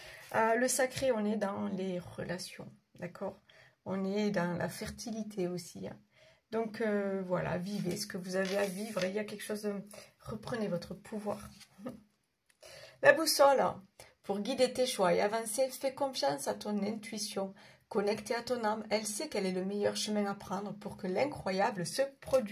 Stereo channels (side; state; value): both; identical; correlation 1.00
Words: Le sacré, on est dans les relations, d'accord? On est dans la fertilité aussi. Hein. Donc, voilà, vivez ce que vous avez à vivre. Il y a quelque chose de... Reprenez votre pouvoir. La boussole, pour guider tes choix et avancer, fais confiance à ton intuition. Connectée à ton âme, elle sait quel est le meilleur chemin à prendre pour que l'incroyable se